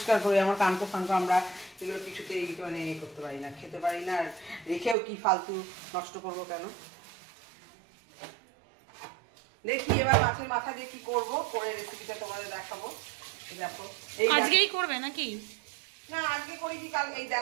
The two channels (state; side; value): drops out; left; at 5.0 s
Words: করি, আমার কানকো ফানকো আমরা এগুলো কিছুতেই মানে করতে পারি না, খেতে পারি না, আর রেখেও কি ফালতু নষ্ট করবো কেন। দেখি এবার মাছের মাথা দিয়ে কি করবো, করে রেসিপিটা তোমাদের দেখাবো। দেখো আজকেই করবে নাকি? না আজকে করি কি কাল, এই